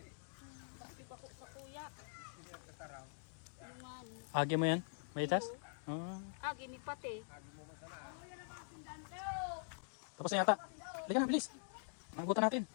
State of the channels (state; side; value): silent; right; digital silence